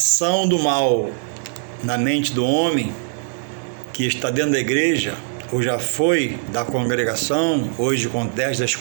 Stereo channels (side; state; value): left; silent; digital silence